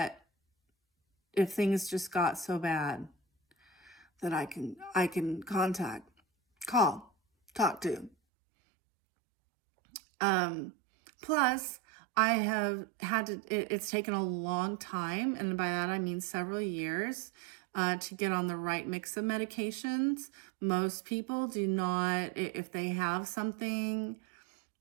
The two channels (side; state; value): left; drops out; at 8.1 s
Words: if things just got so bad, that I can call, talk to. Plus, I have had to, it's taken a long time, and by that I mean several years, to get on the right mix of medications. Most people do not, if they have something